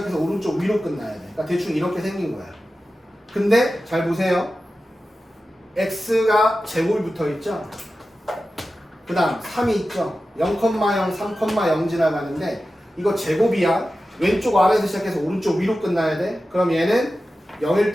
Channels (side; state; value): both; normal; correlation 0.94